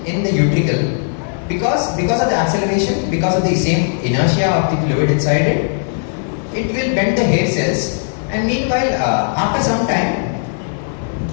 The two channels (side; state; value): right; silent; digital silence